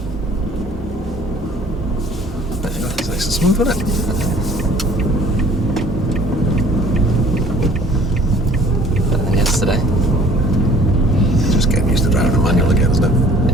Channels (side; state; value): both; normal; correlation 0.53